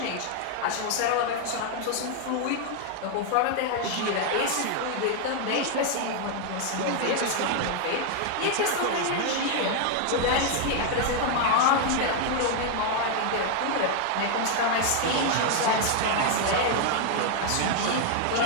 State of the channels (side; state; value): both; different; correlation 0.00